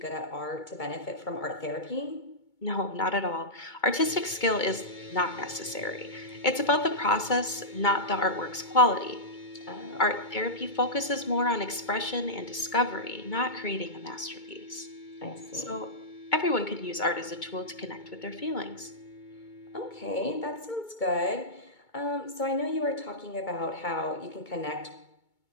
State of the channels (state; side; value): late; right; 2.2 ms